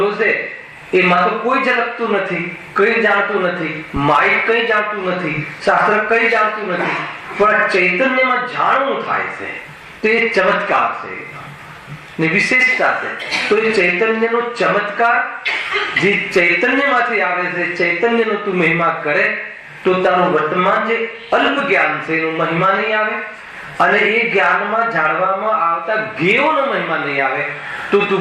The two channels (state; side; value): identical; both; correlation 1.00